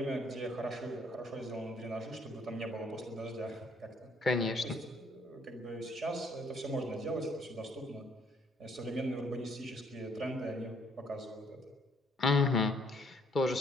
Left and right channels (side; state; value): both; normal; correlation 0.65